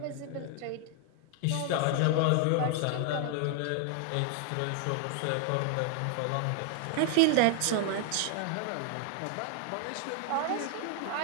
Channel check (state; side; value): different; both; correlation 0.00